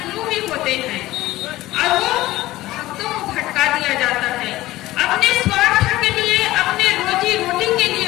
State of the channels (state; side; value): quieter; right; 17.0 dB